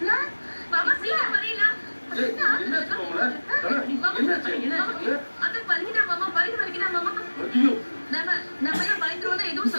மாமா சீக்கிரம் வரீங்களா அக்கா வலிக்குதா மாமா வலிக்குதா மாமா நம்ம பயந்துருவோம் எதுவும்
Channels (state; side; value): inverted; both; correlation -1.00